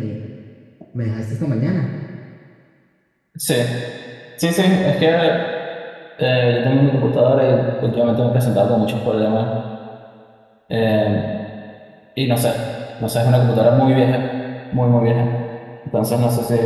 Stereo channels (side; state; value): both; identical; correlation 1.00